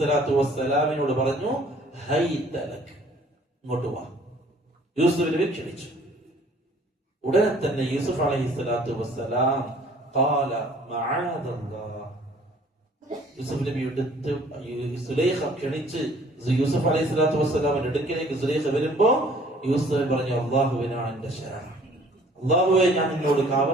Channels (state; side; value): normal; both; correlation 0.55